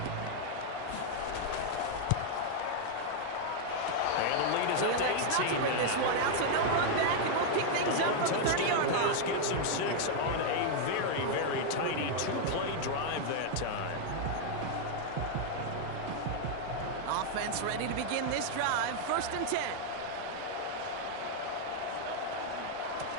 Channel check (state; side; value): different; both; correlation 0.00